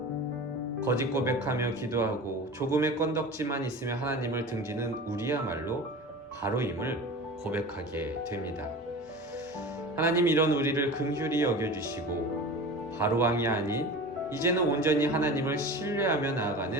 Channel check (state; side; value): normal; both; correlation 0.34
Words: 거짓 고백하며 기도하고 조금의 건덕지만 있으면 하나님을 등지는 우리야말로 바로임을 고백하게 됩니다. 하나님, 이런 우리를 긍휼히 여겨주시고 바로왕이 아닌 이제는 온전히 하나님을 신뢰하며